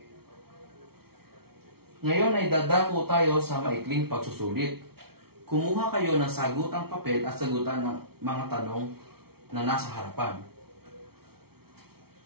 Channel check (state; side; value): late; left; 0.95 ms